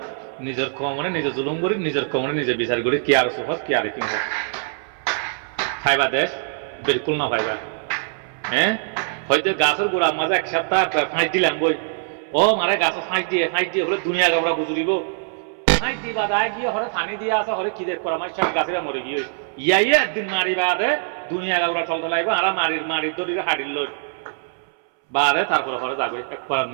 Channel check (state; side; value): silent; left; 64 dB below the other